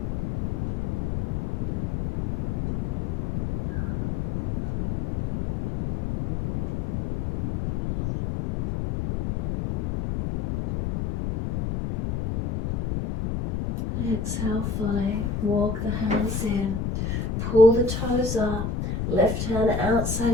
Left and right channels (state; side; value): noise; left; rumble, 2 dB below the sound